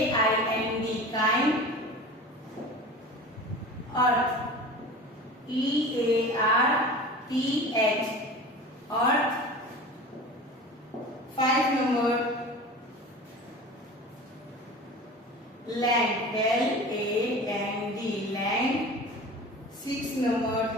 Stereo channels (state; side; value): normal; both; correlation 0.36